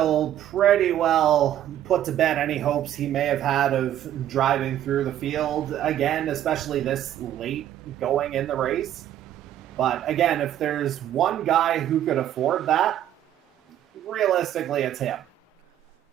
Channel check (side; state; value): left; quieter; 11.5 dB